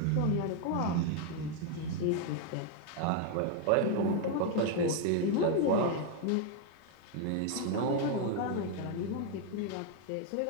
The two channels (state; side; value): different; both; correlation 0.00